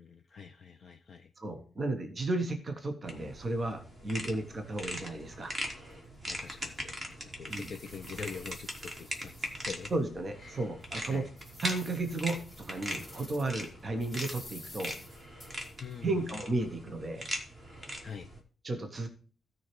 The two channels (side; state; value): both; normal; correlation 0.78